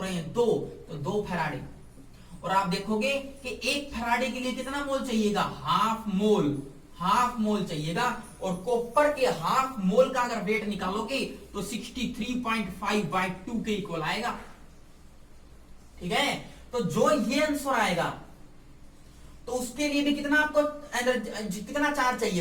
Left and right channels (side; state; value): both; identical; correlation 1.00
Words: हैं, 2, तो 2 फैराडे। और आप देखोगे कि 1 फैराडे के लिए कितना मोल चाहिएगा, हाफ मोल चाहिएगा। और कॉपर के हाफ मोल का अगर वेट निकालोगे तो 63.5/2 के इक्वल आएगा। ठीक है, तो जो ये आंसर आएगा तो उसके लिए भी कितना आपको कितना चार्ज चाहिए,